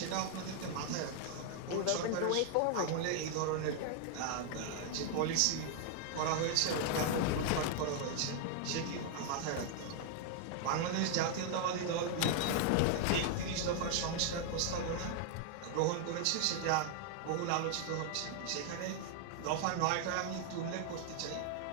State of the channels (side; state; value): both; different; correlation 0.00